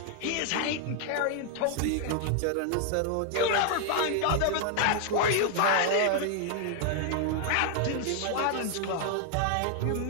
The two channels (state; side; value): different; both; correlation 0.00